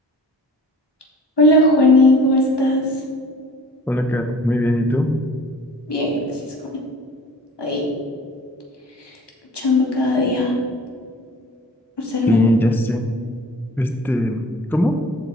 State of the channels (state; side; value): normal; both; correlation 0.45